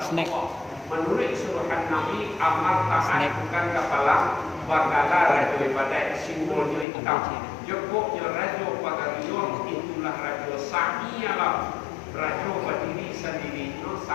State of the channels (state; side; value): drops out; right; at 6.9 s